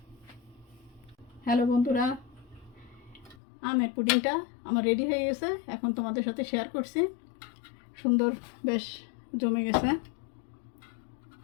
হ্যালো বন্ধুরা, আমের পুডিংটা আমার রেডি হয়ে গেছে, এখন তোমাদের সাথে শেয়ার করছি। সুন্দর বেশ জমে গেছে।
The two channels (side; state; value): right; drops out; at 3.4 s